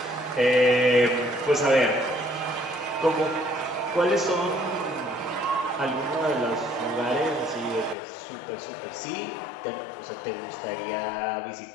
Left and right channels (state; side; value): drops out; right; at 8.0 s